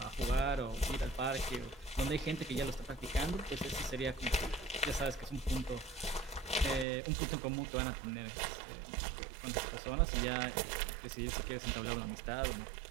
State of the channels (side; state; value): left; drops out; at 6.9 s